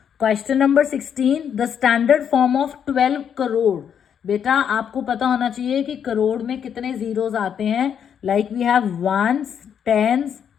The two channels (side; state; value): right; quieter; 8.2 dB